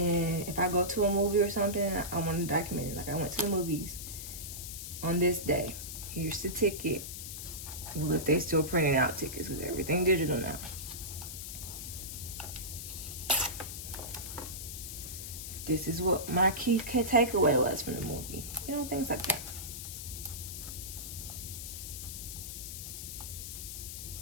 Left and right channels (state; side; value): noise; left; hiss, 8 dB below the sound